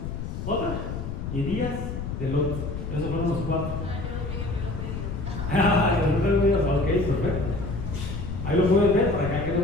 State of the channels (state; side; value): noise; left; rumble, 5 dB below the sound